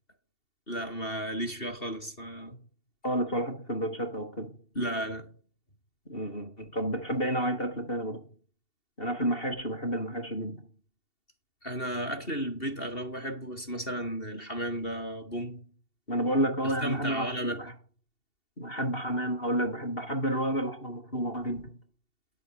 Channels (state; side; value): late; right; 2.7 ms